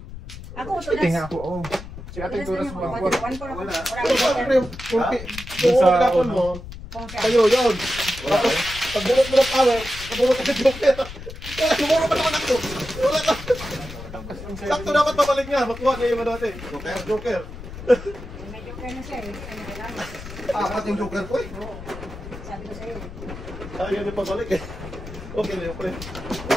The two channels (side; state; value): left; noise; rumble, 12 dB below the sound